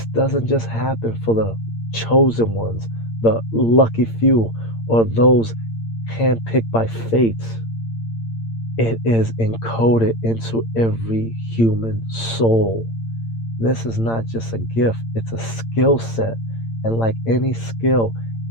doesn't just happen for the chosen ones, the lucky few, or those handpicked by fate. It is encoded into every human soul. This is not just a gift, it's a skill set. And like any skill,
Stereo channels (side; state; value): right; late; 8.8 ms